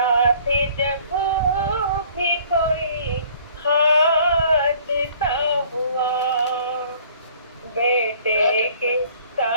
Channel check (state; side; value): inverted; both; correlation -0.55